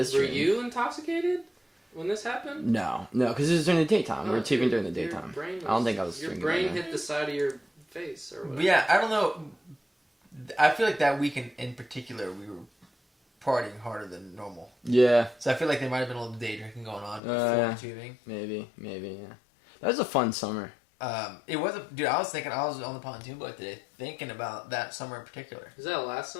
dream. Were you intoxicated when this happened? No, because it was during the daytime. We were taping during the daytime. I don't think I was. Your brain hit the side of your face or whatever. Yeah, I don't know. I feel like that weekend in particular, we were partying harder than normal. Yeah. So I feel like there might have been a little day drinking going on before tubing. Maybe, yeah. That was a fun summer. It was dude. I was on the pontoon boat today, thinking about that summer in particular. Was that last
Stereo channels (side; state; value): right; drops out; at 17.2 s